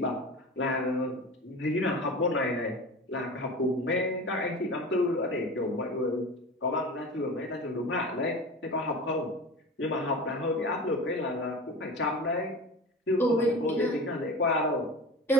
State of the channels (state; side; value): normal; both; correlation 0.32